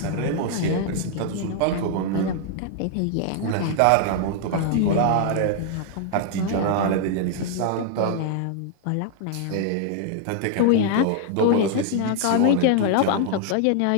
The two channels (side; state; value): both; different; correlation 0.00